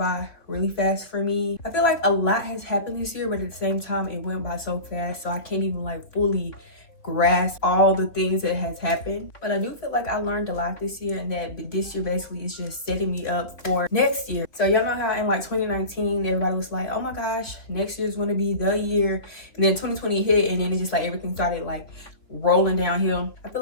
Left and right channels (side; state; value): right; late; 3.7 ms